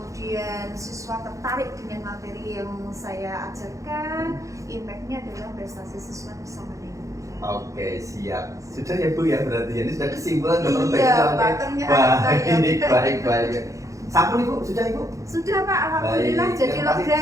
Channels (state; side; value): late; left; 0.15 ms